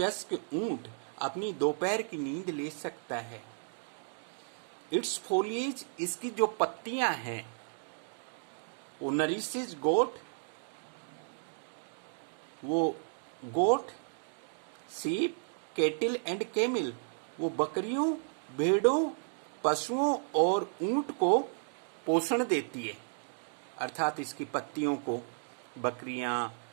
ऊंट अपनी दोपहर की नींद ले सकता है। इट्स फोलिएज, इसकी जो पत्तियां हैं, वो नरिशेज गोट, वो गोट, सीप, केटिल एंड कैमिल, वो बकरियों, भेड़ों, पशुओं और ऊंट को पोषण देती है। अर्थात इसकी पत्तियों को बकरियां,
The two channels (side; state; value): left; silent; digital silence